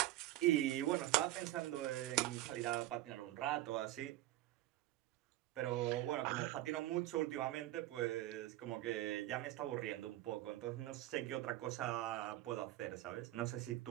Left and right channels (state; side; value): quieter; left; 15.6 dB